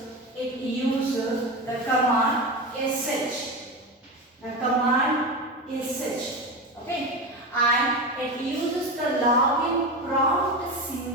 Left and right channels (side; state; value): both; normal; correlation 0.21